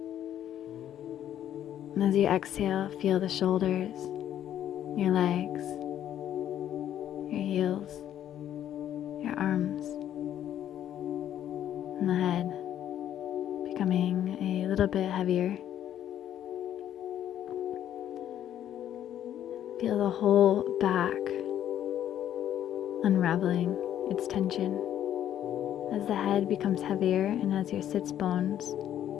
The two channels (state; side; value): quieter; right; 10.9 dB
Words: And as you exhale, feel the shoulders, your legs, your heels, your arms, and the head becoming a little bit heavier. Feel the whole back unraveling its tension as the head becomes heavier and as your sits bones